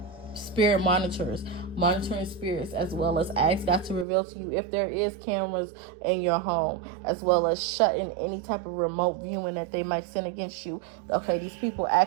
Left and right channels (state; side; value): drops out; left; at 4.0 s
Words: monitors, monitoring spirits, as well as ask God to reveal to you if there is cameras in your home, as well as shutting any type of remote viewing that they might send against you. Okay, these people